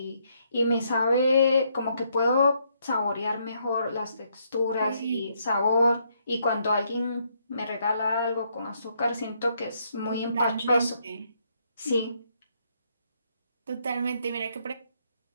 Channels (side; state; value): both; inverted; correlation -0.73